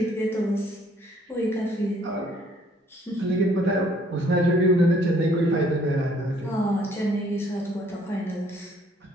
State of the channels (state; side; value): normal; both; correlation 0.62